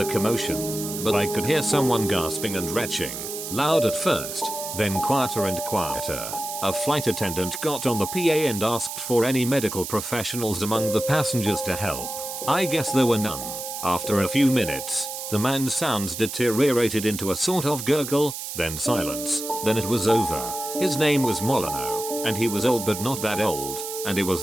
commotion, but I could hear someone gasping and retching, loud at first, then quieter and quieter. A flight attendant got on the PA and asked for any medical professionals among the passengers to help. I guess there were none. After a few minutes, the man's sounds deteriorated into a sort of gurgle, then silence, then it was over. His name was Molyneux, and he was old but not that old, and it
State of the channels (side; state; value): right; noise; hiss, 7 dB below the sound